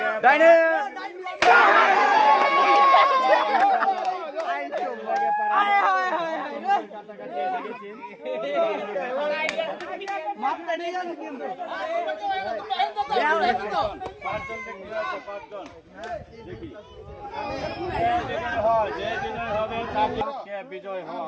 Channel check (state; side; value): identical; both; correlation 1.00